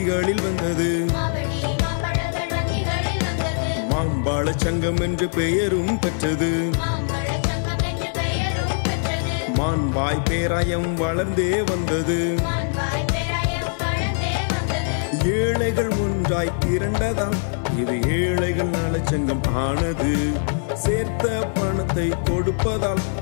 வந்தது. மாம்பழ சங்கம் என்று பெயரும் பெற்றது. மான்பாய் பேராயம் வளர்ந்தே வந்தது. ஏழைகள் ஒன்றாய் திரண்டதாம் இது ஏழைகள் நலச்சங்கம் ஆனது. சேர்த்த பணத்தை கொடுப்பதால்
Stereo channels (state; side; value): silent; right; digital silence